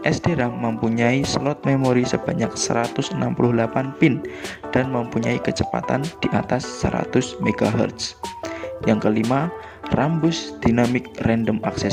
SDRAM mempunyai slot memori sebanyak 168 pin dan mempunyai kecepatan di atas 100 MHz. Yang kelima, Rambus Dynamic Random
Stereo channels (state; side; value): identical; both; correlation 1.00